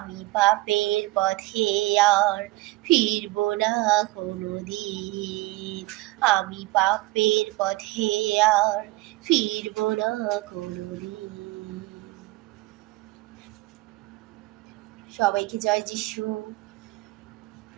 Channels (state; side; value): quieter; left; 20.2 dB